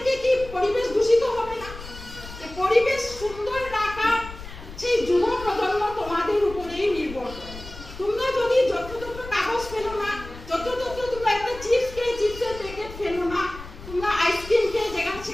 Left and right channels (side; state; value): left; noise; rumble, 14 dB below the sound